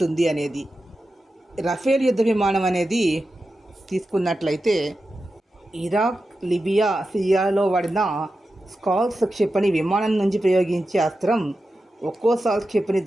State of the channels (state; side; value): normal; both; correlation 0.91